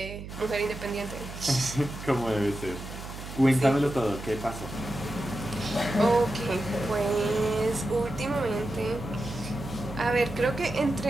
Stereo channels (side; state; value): right; noise; hum, 11 dB below the sound